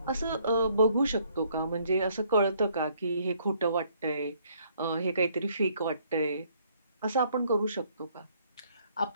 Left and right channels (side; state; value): both; inverted; correlation -0.66